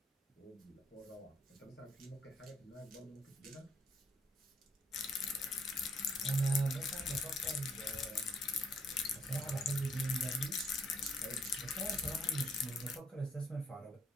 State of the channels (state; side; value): normal; both; correlation 0.66